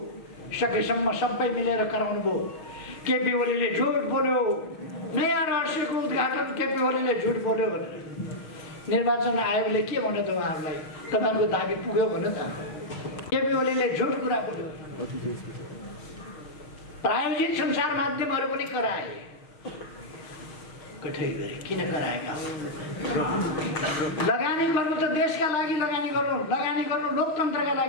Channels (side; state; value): right; late; 6.4 ms